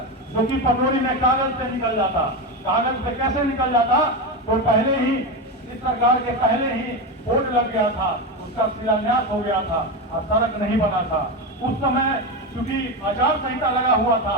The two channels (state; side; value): normal; both; correlation 0.16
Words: जो कि पटोरी में कागज से निकल जाता। कागज से कैसे निकल जाता, तो पहले ही इस सरकार के पहले ही बोर्ड लग गया था, उसका शिलान्यास हो गया था और सड़क नहीं बना था। उस समय क्योंकि आचार संहिता लगा हुआ था,